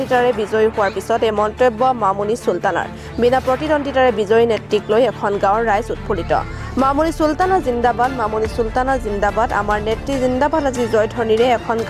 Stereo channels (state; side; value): identical; both; correlation 1.00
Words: বিজয়ী হোৱাৰ পিছত এই মন্তব্য মামুনি চুলতানাৰ বিনা প্ৰতিদ্বন্দিতাৰে বিজয়ী নেত্ৰীক লৈ এখন গাঁৱৰ ৰাইজ উৎফুল্লিত মামুনি চুলতানা জিন্দাবাদ মামুনি চুলতানা জিন্দাবাদ আমাৰ নেত্ৰী জিন্দাবাদ আজি জয়ধ্বনিৰে এখন